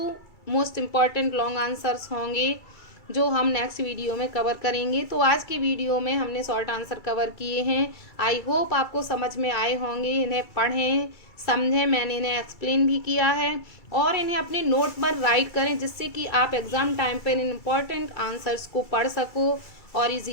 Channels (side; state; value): right; late; 2.3 ms